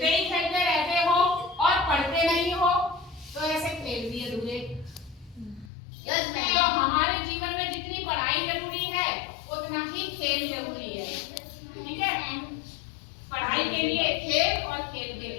ही खेलते रहते हो और पढ़ते नहीं हो तो ऐसे खेल भी अधूरे। तो हमारे जीवन में जितनी पढ़ाई जरूरी है उतना ही खेल जरूरी है, ठीक है। पढ़ाई के लिए खेल और खेल के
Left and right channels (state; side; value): drops out; right; at 5.7 s